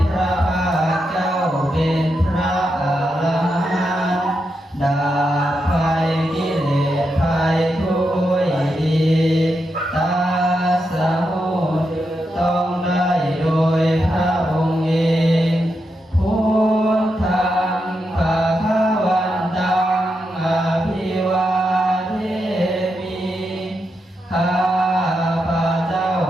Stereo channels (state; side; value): normal; both; correlation 0.85